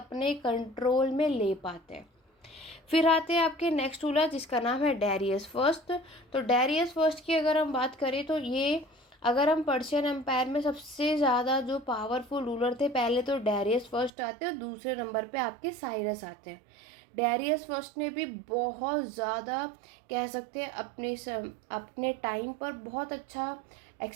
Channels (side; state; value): left; drops out; at 14.1 s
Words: कंट्रोल में ले पाते हैं। फिर आते हैं आपके नेक्स्ट रूलर जिसका नाम है डेरियस फर्स्ट। तो डेरियस फर्स्ट की अगर हम बात करें तो ये, अगर हम पर्शियन एम्पायर में सबसे ज़्यादा जो पावरफुल रूलर थे, पहले तो डेरियस फर्स्ट आते हैं और दूसरे नंबर पे आपके साइरस आते हैं। डेरियस फर्स्ट ने भी बहुत ज़्यादा कह सकते हैं अपने टाइम पर बहुत अच्छा